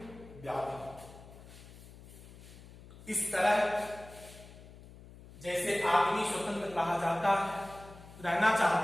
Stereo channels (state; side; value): noise; left; hum, 18 dB below the sound